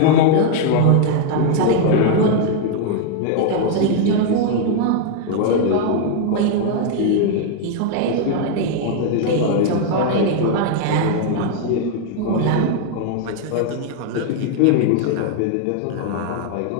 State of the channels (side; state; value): both; different; correlation 0.00